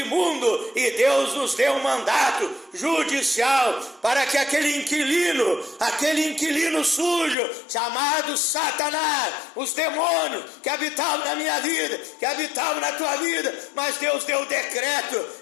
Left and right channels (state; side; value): drops out; right; at 7.4 s